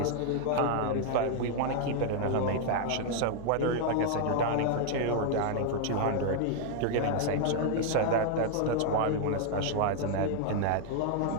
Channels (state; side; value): different; both; correlation 0.00